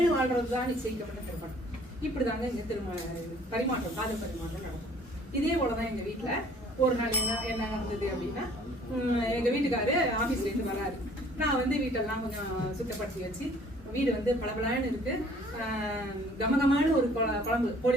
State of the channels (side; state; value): both; normal; correlation 0.55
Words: வாழ்றதுதான் நிச்சயிக்கப்பட்ட திருமணம். இப்படிதாங்க இந்த பரிமாற்றம், காதல் பரிமாற்றம் நடக்கும். இதே போலதான் எங்க வீட்டுல ஒரு நாள் என்ன நடந்தது அப்படின்னா, எங்க வீட்டுக்காரு ஆபீஸ்ல இருந்து வராரு. நான் வந்து வீட்டெல்லாம் கொஞ்சம் சுத்தப்படுத்தி வச்சு, வீடு வந்து பளபளன்னு இருக்கு, கமகமான ஒரு குழம்பு, கோழி